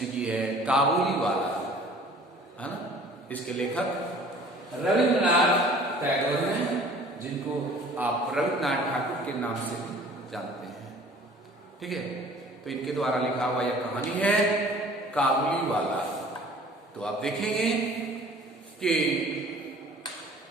की है काबुली वाला, है ना। इसके लेखक रविंद्रनाथ टैगोर हैं, जिनको आप रविंद्रनाथ ठाकुर के नाम से जानते हैं। ठीक है, तो इनके द्वारा लिखा हुआ यह कहानी है काबुली वाला। तो आप देखेंगे कि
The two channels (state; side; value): normal; both; correlation 0.50